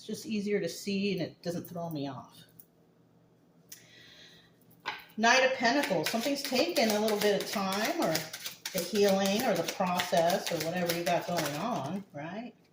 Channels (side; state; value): both; identical; correlation 1.00